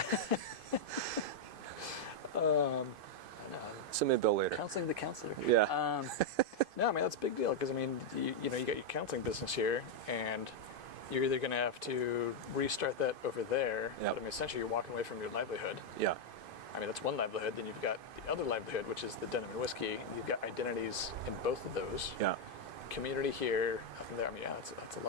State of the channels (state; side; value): late; left; 2.5 ms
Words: Send me a bill later. Counseling the counselor. Yeah. No, I mean, that's a big deal because, I mean, you got your counseling business here, and you're either going to have to restart that over there. Yep. But I mean, essentially, you're walking away from your livelihood. Yeah. I mean, that's one livelihood. Then you've got the other livelihood, which is the denim and whiskey. You've got identities in both of those. Yeah. Community here, nothing there. I mean, yeah, that's a